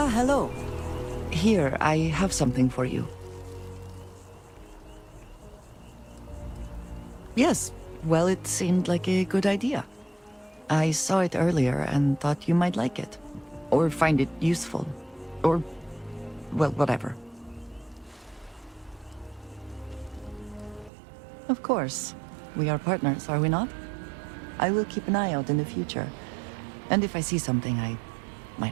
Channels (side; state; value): left; drops out; at 20.9 s